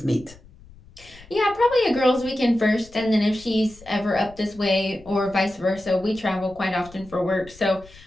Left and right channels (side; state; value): left; noise; rumble, 22 dB below the sound